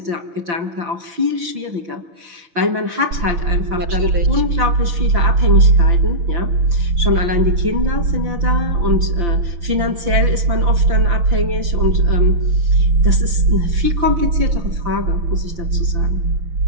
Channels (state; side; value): late; left; 5.8 ms